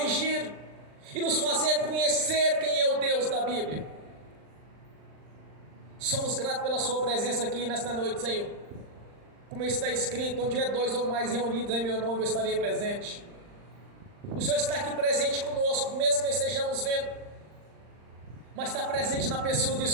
e nos fazer conhecer quem é o Deus da Bíblia. Somos gratos pela sua presença aqui nesta noite, Senhor. Como está escrito, onde é dois ou mais reunidos em meu nome, eu estarei presente. O Senhor está aqui presente conosco, mesmo que estejamos vendo, mas está presente na pessoa do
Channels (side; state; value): left; late; 39 ms